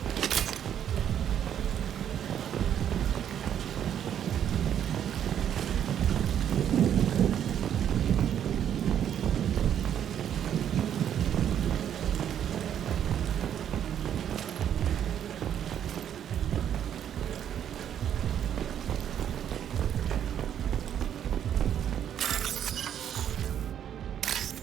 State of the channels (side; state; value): left; quieter; 9.6 dB